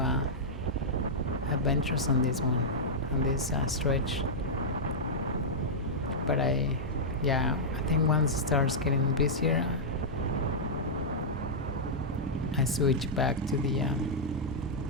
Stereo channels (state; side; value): normal; both; correlation -0.09